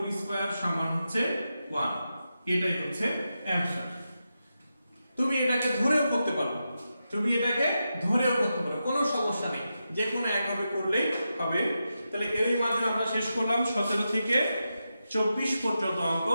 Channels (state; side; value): inverted; both; correlation -0.88